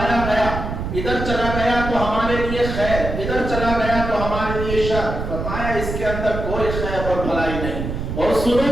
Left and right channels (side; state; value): right; noise; rumble, 5 dB below the sound